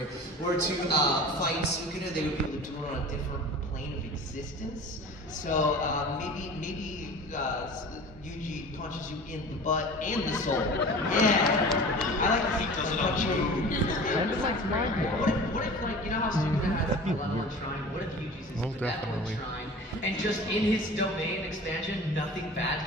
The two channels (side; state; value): both; normal; correlation 0.39